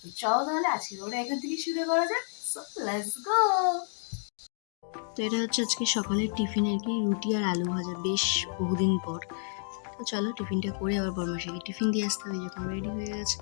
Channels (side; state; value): right; silent; 57 dB below the other